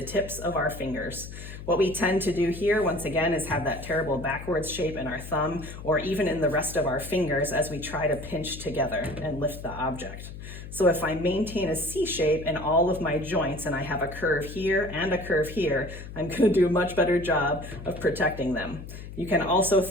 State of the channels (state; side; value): noise; left; hum, 12 dB below the sound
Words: tips of our fingers. What we tend to do here, once again, is have that terrible backwards shape in our thumb or even in the rest of our fingers as we try to pinch together and lift the object. So if I maintain a C shape in all of my joints and I have a curve here and a curve here, I'm going to do a much better job of protecting them. You can also